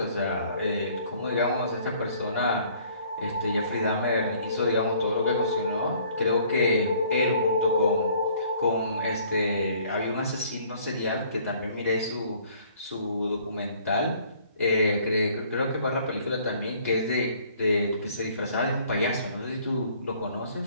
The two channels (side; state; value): both; inverted; correlation -0.57